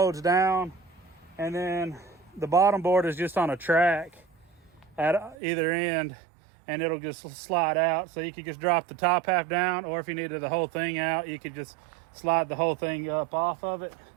down, and then the bottom board is just on a track at either end, and it'll just slide out. So you could just drop the top half down, or if you needed the whole thing out, you could just slide the whole thing up off of it.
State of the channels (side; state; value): left; drops out; at 5.4 s